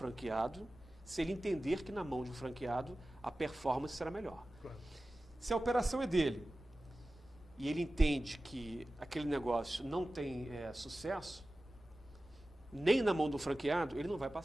se ele entender que na mão de um franqueado a performance será melhor. Claro. Se a operação é dele e ele entende que aquele negócio não tem sucesso, nem na mão do franqueado, ele não vai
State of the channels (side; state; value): both; normal; correlation 0.96